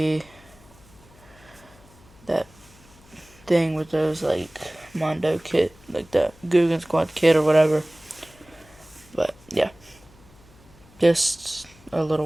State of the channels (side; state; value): left; noise; hum, 26 dB below the sound